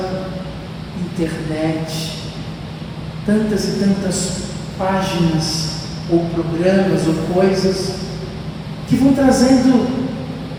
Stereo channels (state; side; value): identical; both; correlation 1.00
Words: internet, tantas e tantas páginas ou programas ou coisas que vão trazendo